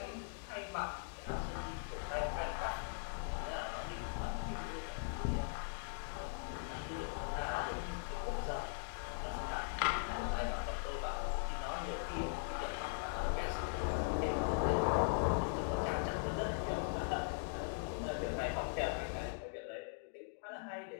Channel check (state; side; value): silent; right; digital silence